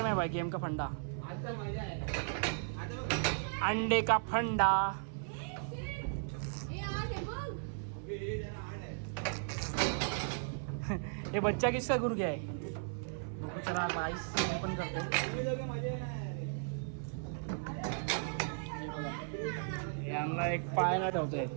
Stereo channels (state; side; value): silent; left; 54 dB below the other